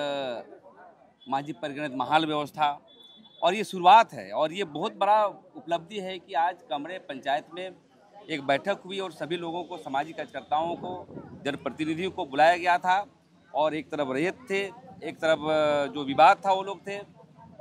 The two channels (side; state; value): both; identical; correlation 1.00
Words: मांझी परिगणित महाल व्यवस्था, और ये शुरुआत है। और ये बहुत बड़ा उपलब्धि है कि आज कमरे पंचायत में एक बैठक हुई और सभी लोगों को, सामाजिक कार्यकर्ताओं को, जनप्रतिनिधियों को बुलाया गया था और एक तरफ रैयत थे, एक तरफ जो विवाद था वो लोग थे,